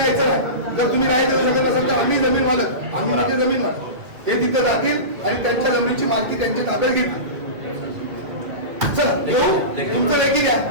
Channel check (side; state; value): left; late; 2.6 ms